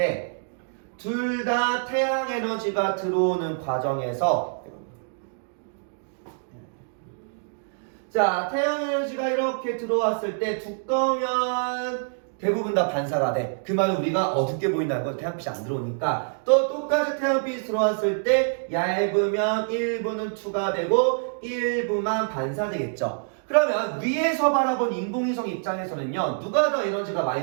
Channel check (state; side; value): silent; left; digital silence